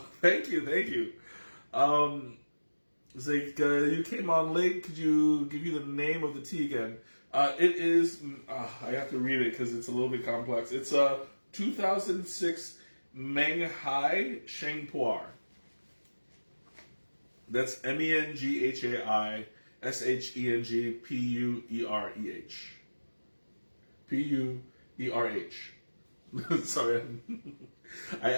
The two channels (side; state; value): both; inverted; correlation -1.00